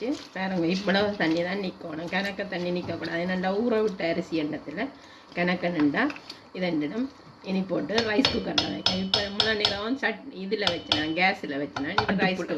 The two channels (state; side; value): identical; both; correlation 1.00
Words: பாருங்க, இவ்வளவு தண்ணி தான் நிற்கணும். கணக்க தண்ணி நிற்கக்கூடாது. என்னண்டா ஊற விட்ட அரிசி எண்ணத்தில் கணக்க நின்றா இதெண்டிடும். இனி போட்டு ரைஸ் குக்கரில் வைக்கணும். இப்போ இவ்வளோ நேரம் இதில் வச்சினேன், கேஸில் வச்சினேன்.